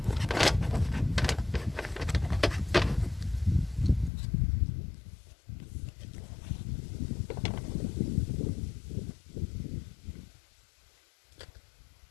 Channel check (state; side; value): drops out; right; at 4.1 s